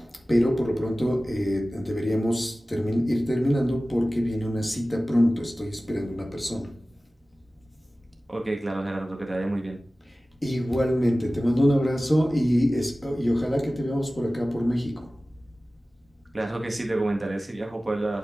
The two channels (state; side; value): normal; both; correlation 0.97